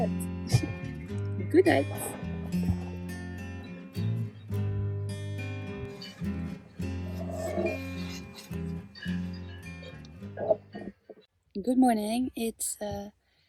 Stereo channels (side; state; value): both; identical; correlation 1.00